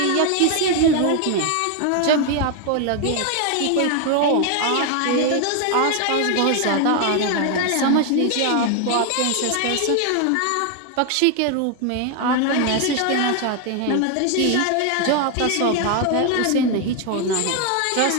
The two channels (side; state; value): both; different; correlation 0.01